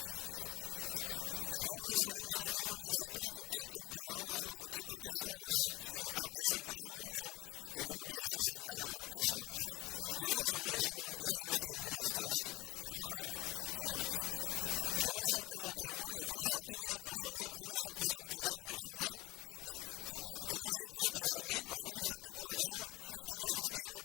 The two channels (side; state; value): right; quieter; 20.4 dB